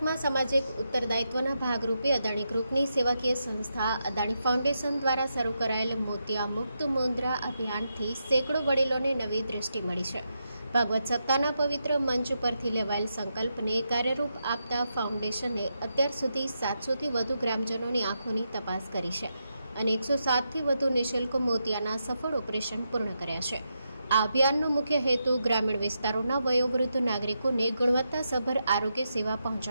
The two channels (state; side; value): inverted; both; correlation -0.84